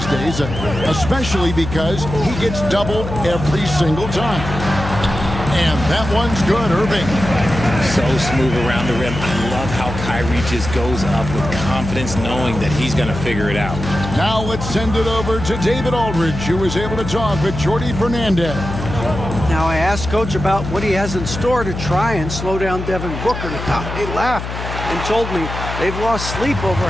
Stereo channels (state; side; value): noise; left; hum, 7 dB below the sound